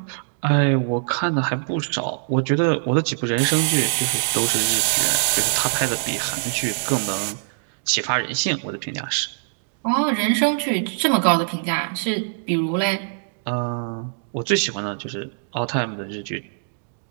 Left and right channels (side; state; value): left; silent; digital silence